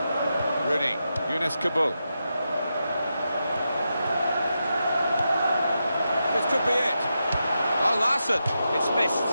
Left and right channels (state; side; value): inverted; both; correlation -0.87